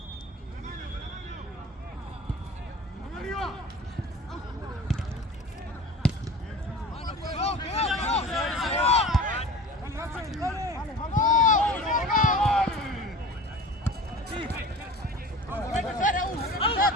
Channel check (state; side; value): normal; both; correlation 0.39